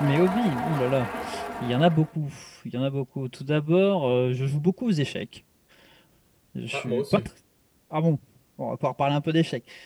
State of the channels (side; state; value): both; identical; correlation 1.00